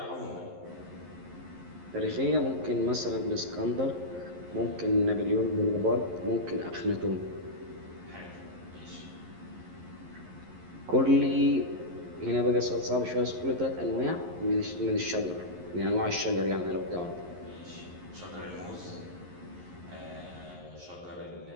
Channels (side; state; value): left; late; 11 ms